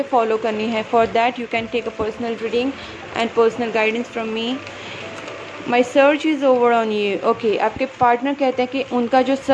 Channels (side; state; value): both; identical; correlation 1.00